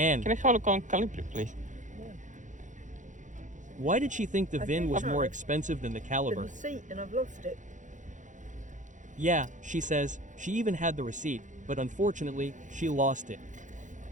Can I have a look on caliber, please? why did she think the I VIN think was so. more expensive than the The caliber? receipt, and I've lost it. Yeah, she says, she even had the receipt, but unfortunately, she lost it.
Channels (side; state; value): left; late; 0.36 ms